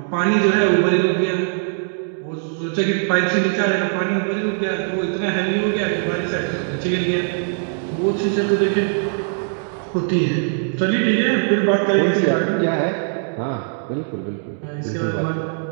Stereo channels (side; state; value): left; silent; 60 dB below the other